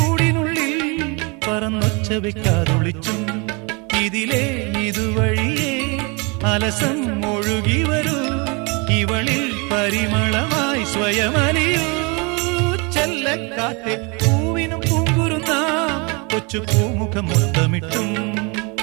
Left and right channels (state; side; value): quieter; left; 30.2 dB